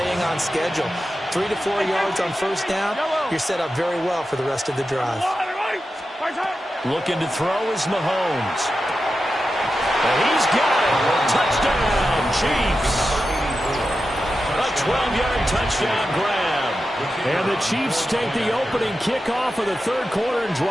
on schedule. 3 to 4 yards on 1st down, you're set up very well for the rest of the drive. Looking to throw is Mahomes. And he's got it. Touchdown, Chiefs. A 12-yard touchdown grab. And the Chiefs take the opening kickoff of the 3rd quarter and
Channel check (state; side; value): normal; both; correlation 0.91